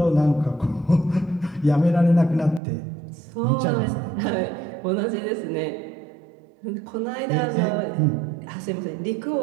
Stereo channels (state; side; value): drops out; left; at 2.6 s